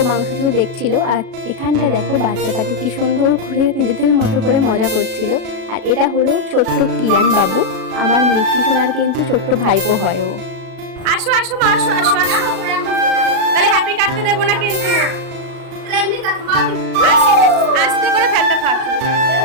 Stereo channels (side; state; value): left; late; 37 ms